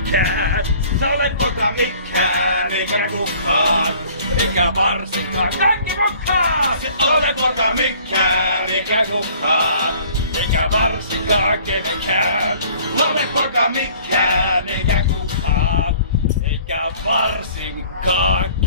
Se ole poka mikään, eikä kukaan, eikä varsinkaan kaikki mukaan. Se ole poka mikään, eikä kukaan, eikä varsinkaan kenenkään. Ole poka mikään, eikä kukaan, eikä varsinkaan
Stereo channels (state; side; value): inverted; both; correlation -0.53